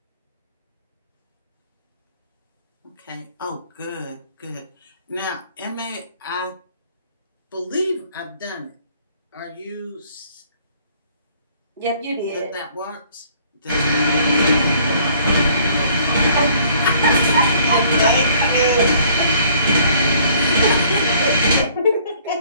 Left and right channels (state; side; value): inverted; both; correlation -0.58